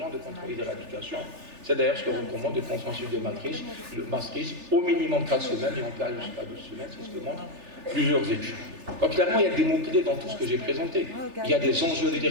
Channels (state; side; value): late; left; 3.4 ms